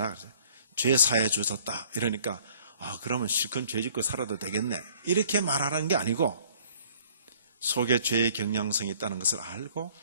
죄 사해 주셨다. 이러니까 그러면 실컷 죄 짓고 살아도 되겠네. 이렇게 말하는 게 아니고 속에 죄의 경향성이 있다는 것을 알고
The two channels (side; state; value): both; inverted; correlation -0.57